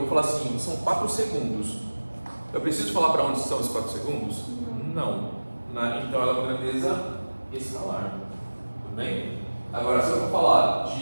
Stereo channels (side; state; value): both; inverted; correlation -1.00